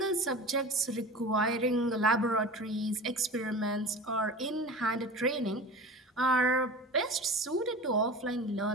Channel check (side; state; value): both; normal; correlation 0.35